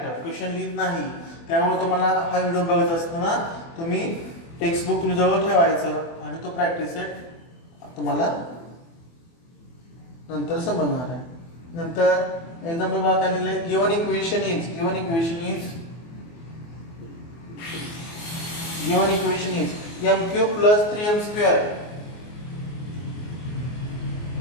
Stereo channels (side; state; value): right; late; 24 ms